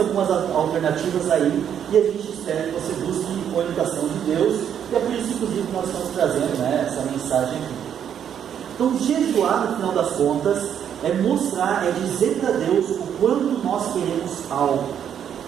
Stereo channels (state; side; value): quieter; left; 8.9 dB